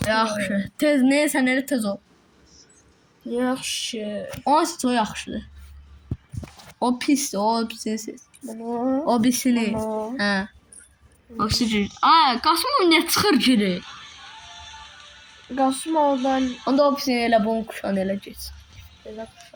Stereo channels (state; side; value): identical; both; correlation 1.00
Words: Yaxşı. Tez neysən elə tez ol. Yaxşı. O yaxşıdır. O pisdir, o pisdir. Bunu. O pisini. Bunu. Hə. O pisdir. Ay, Qasımov nə çıxır geri? Qasımovdan Onda o pisini elə bunun kuşan elə geç. belə